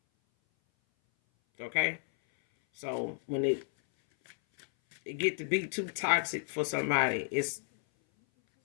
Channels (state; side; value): silent; right; 56 dB below the other